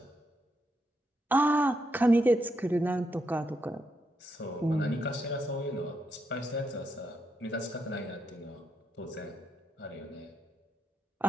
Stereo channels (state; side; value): normal; both; correlation 0.81